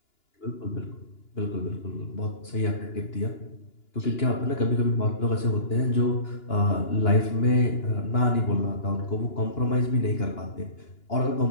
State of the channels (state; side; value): late; right; 2.9 ms